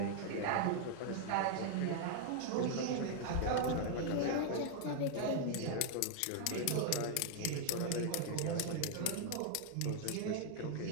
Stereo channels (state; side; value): different; both; correlation 0.00